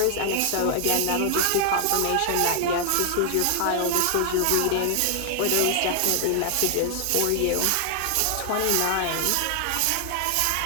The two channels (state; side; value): different; both; correlation 0.00